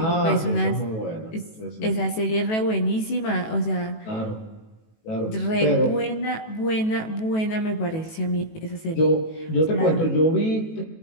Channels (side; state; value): right; late; 18 ms